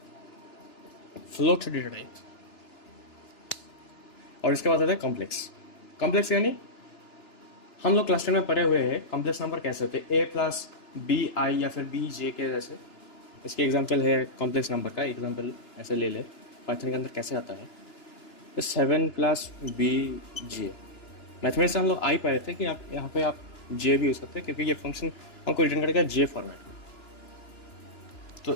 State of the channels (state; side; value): late; right; 2.9 ms